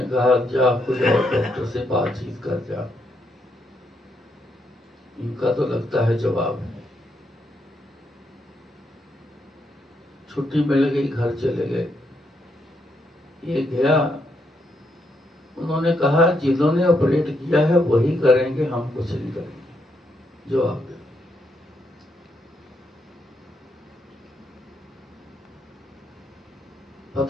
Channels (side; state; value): both; normal; correlation 0.78